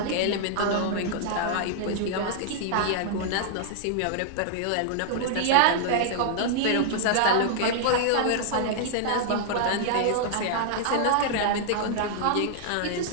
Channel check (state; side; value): different; both; correlation -0.01